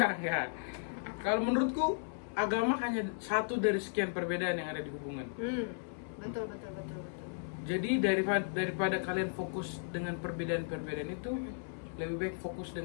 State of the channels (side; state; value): right; silent; 54 dB below the other